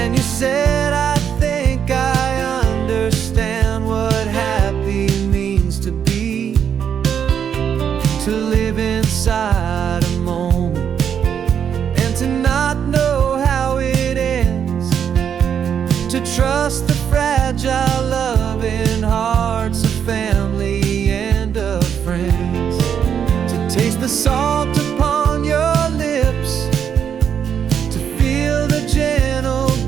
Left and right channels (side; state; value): left; quieter; 8.1 dB